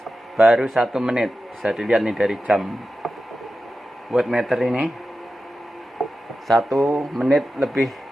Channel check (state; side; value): normal; both; correlation 0.92